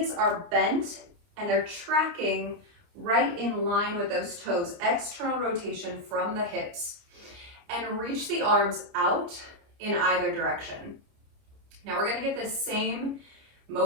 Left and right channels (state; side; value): late; left; 29 ms